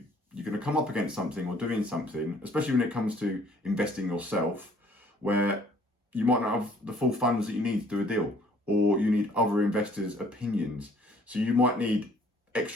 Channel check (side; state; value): both; normal; correlation 0.59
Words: going to come up against something or doing something, especially when it comes to investing yourself, where you might not have the full funds that you need to do a deal, or you need other investors' opinions. So you might need